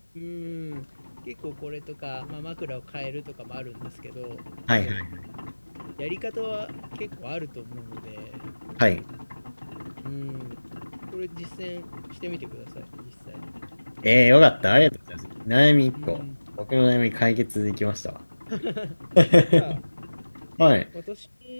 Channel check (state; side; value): inverted; both; correlation -1.00